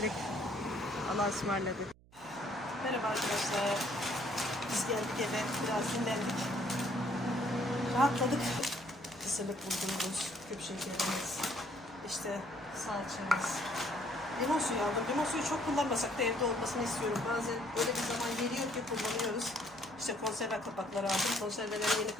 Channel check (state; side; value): noise; right; hum, 26 dB below the sound